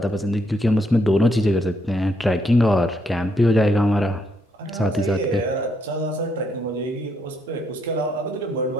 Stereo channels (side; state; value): both; normal; correlation 0.75